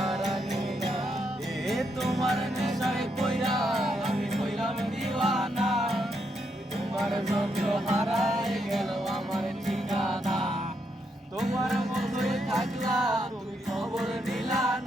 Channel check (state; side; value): normal; both; correlation 0.79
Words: না, এ তোমার নেশায় কইরা আমি কইলাম দিওয়ানা, তোমার যন্ত্র হারায় গেল আমার ঠিকানা, তোমার মতোই থাকলা তুমি খবর নিলা